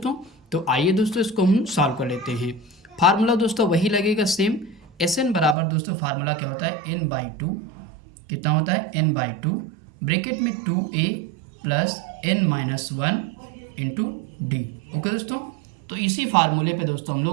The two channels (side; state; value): left; drops out; at 5.6 s